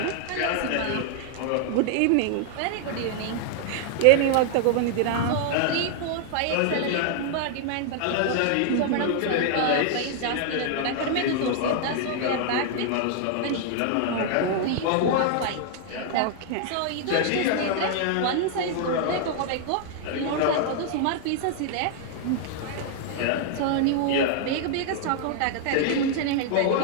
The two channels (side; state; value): both; different; correlation 0.00